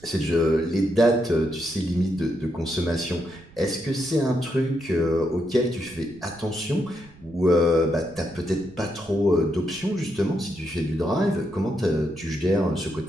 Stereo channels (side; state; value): right; noise; rumble, 24 dB below the sound